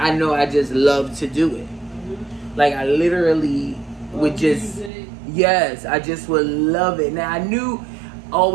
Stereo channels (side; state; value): left; drops out; at 4.9 s